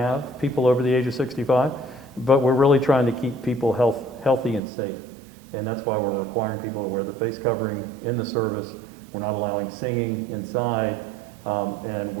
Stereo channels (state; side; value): drops out; left; at 4.6 s